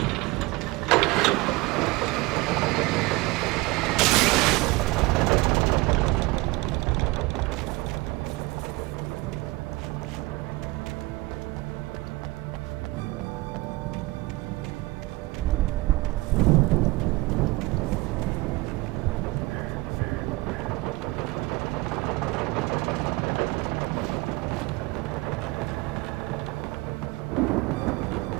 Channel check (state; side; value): quieter; left; 22.0 dB